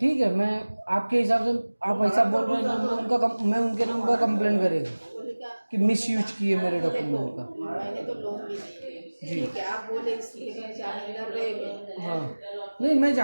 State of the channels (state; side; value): inverted; both; correlation -1.00